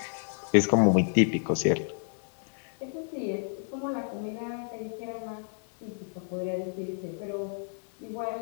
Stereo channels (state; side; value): silent; right; 58 dB below the other